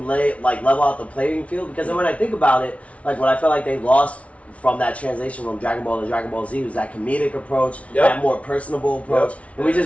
out the playing field because then when I think about it, like what I felt like they lost from that translation from Dragon Ball to Dragon Ball Z was that comedic approach, that more personable approach, and we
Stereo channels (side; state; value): right; late; 0.064 ms